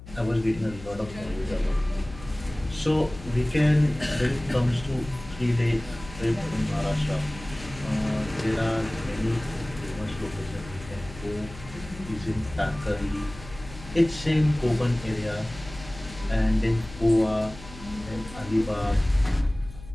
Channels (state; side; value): noise; left; hum, 16 dB below the sound